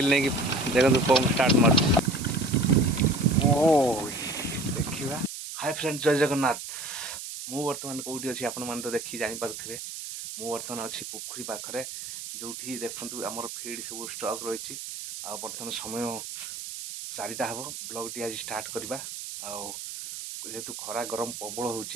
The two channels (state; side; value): noise; right; hiss, 9 dB below the sound